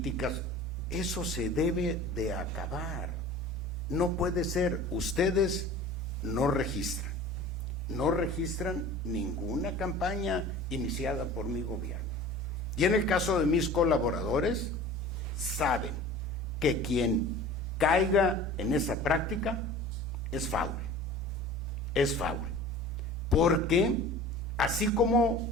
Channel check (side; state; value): both; normal; correlation 0.41